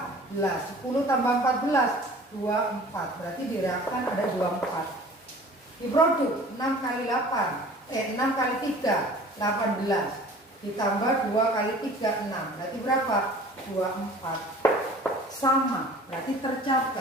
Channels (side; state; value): both; normal; correlation 0.46